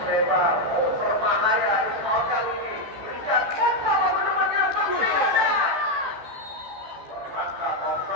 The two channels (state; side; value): late; left; 14 ms